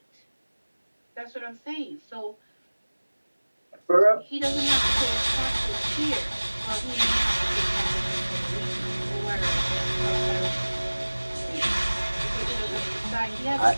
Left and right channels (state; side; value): inverted; both; correlation -1.00